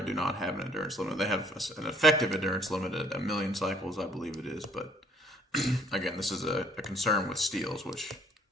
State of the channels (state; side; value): normal; both; correlation 0.61